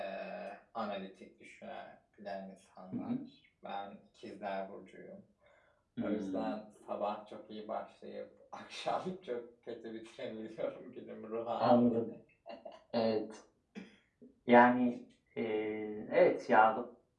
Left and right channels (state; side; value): identical; both; correlation 1.00